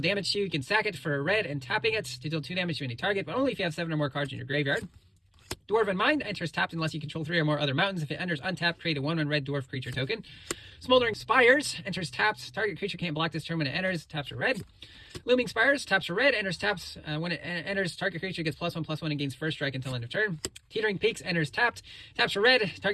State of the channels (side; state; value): both; identical; correlation 1.00